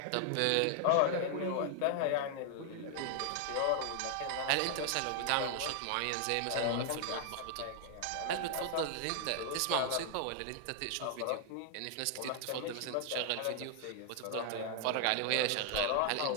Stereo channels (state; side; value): different; both; correlation 0.00